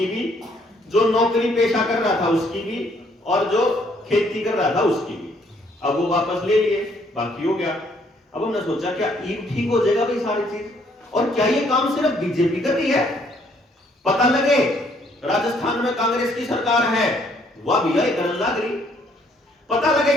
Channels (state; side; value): normal; both; correlation 0.66